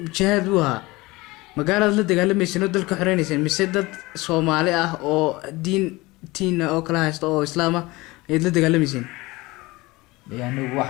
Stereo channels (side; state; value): right; quieter; 21.8 dB